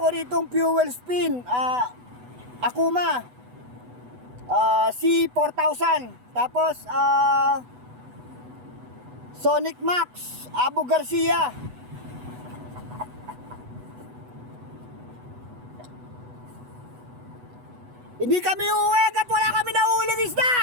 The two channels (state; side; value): late; left; 8.1 ms